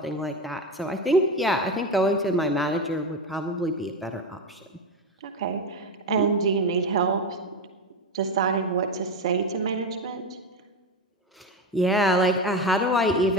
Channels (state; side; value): normal; both; correlation 0.18